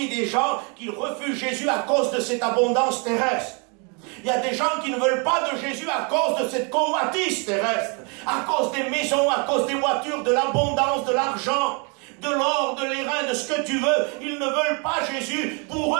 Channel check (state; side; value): quieter; left; 34.5 dB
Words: des gens qui refusent Jésus à cause de cette abondance terrestre. Il y a des gens qui ne veulent pas de Jésus à cause de cette convoitise terrestre, à cause des maisons, à cause des voitures, de l'abondance, de l'argent, de l'or, de l'airain, de ce que tu veux. Ils ne veulent pas Jésus. Pour